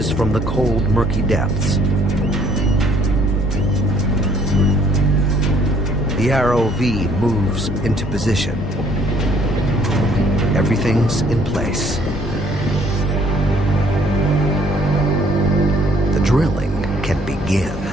from the cold, murky depths. The ROV moves into position. Everything's in place. The drilling can begin.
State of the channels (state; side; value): normal; both; correlation 0.61